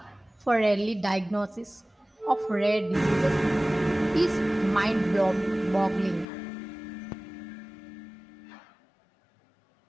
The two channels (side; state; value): right; drops out; at 6.2 s